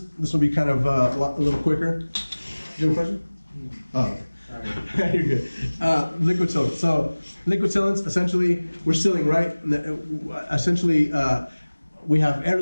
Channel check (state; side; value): inverted; both; correlation -1.00